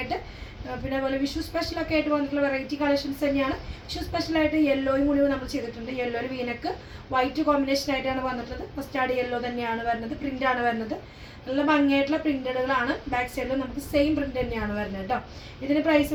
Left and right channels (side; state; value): both; identical; correlation 1.00